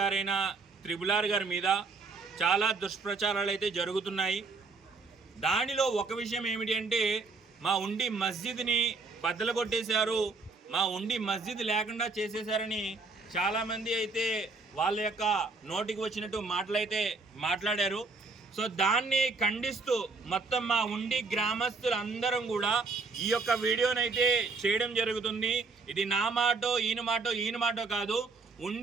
త్రిపులార్ గారి మీద చాలా దుష్ప్రచారాలు అయితే జరుగుతున్నాయి. దానిలో ఒక విషయం ఏమిటి అంటే, మా ఉండి మస్జిద్ని బద్దలు కొట్టేశారు, మా ఉండి మస్జిద్ లేకుండా చేసేశారని చాలామంది అయితే వాళ్ళ యొక్క నోటికి వచ్చినట్టు మాటలైతే మాట్లాడారు. సో దాన్ని ఖండిస్తూ మొత్తం మా ఉండి గ్రామస్తులందరం కూడా ఈ యొక్క వీడియోనైతే చేయడం జరుగుతుంది. ఇది నా మాటో ఈయన మాటో కాదు,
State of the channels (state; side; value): quieter; left; 4.0 dB